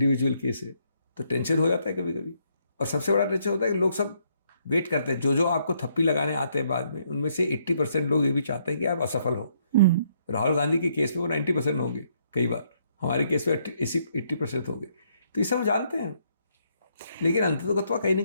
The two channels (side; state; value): both; inverted; correlation -0.72